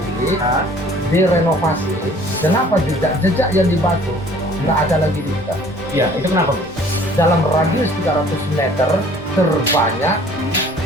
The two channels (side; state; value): both; normal; correlation 0.53